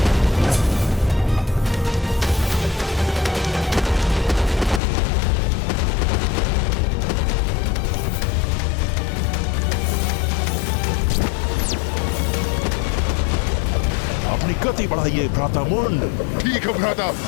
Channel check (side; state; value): right; drops out; at 4.8 s